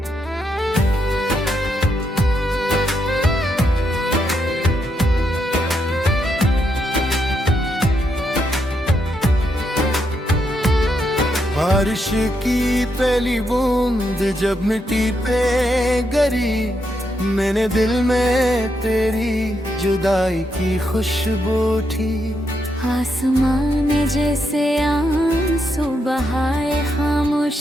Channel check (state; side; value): normal; both; correlation 0.80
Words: बारिश की पहली बूंद जब मिट्टी पे गिरी, मैंने दिल में तेरी जुदाई की खुशबू उठी। आसमान ने जैसे आंसू बहाए